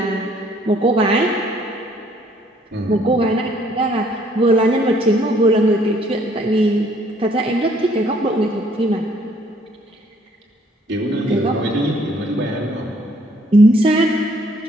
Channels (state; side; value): normal; both; correlation 0.63